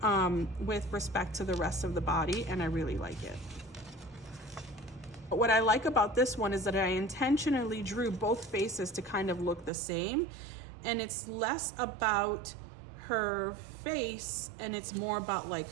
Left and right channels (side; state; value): left; drops out; at 9.7 s